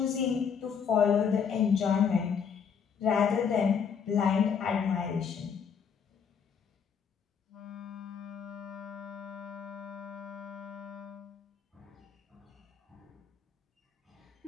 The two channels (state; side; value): quieter; right; 6.9 dB